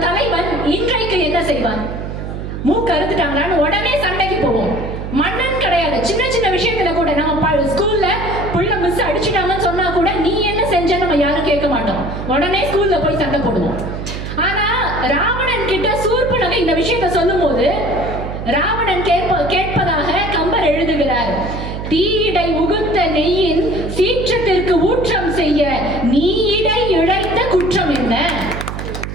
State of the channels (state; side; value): noise; right; hum, 7 dB below the sound